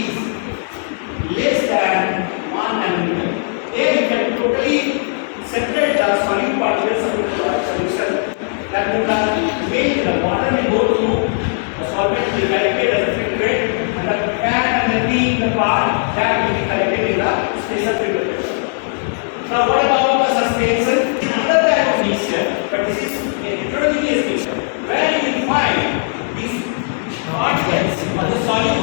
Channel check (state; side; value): silent; right; 66 dB below the other